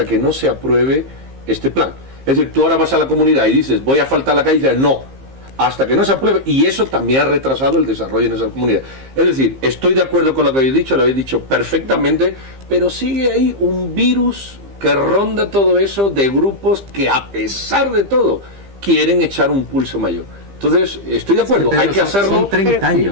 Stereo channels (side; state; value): left; late; 15 ms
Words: que no se apruebe este plan. Es decir, tú ahora vas a la comunidad y dices, voy a faltar la calle, y dices, no, hasta que no se apruebe, y eso también ha retrasado el desarrollo en esas comunidades. Es decir, estoy de acuerdo con lo que habéis dicho, lo habéis dicho perfectamente, pero sigue ahí un virus que ronda todo eso de grupos que a pesar de todo quieren echar un pulso mayor. Entonces, estoy de acuerdo, hay que hacerlo. Son 30